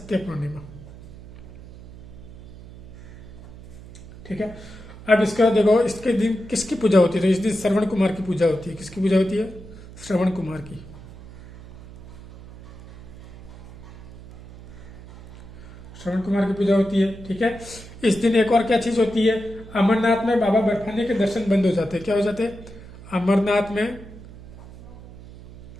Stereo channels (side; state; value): right; noise; hum, 17 dB below the sound